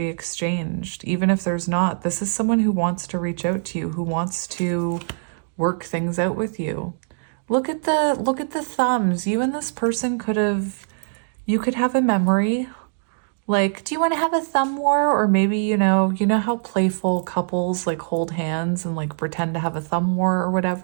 exchanged. Even if there's not, this is someone who wants to reach out to you, who wants to work things out with you. Look at the thumbs. You and this person could have a memory. Like, do you want to have a thumb war? Or maybe, you know how playful couples like hold hands and like pretend to have a thumb war or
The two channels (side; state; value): left; silent; digital silence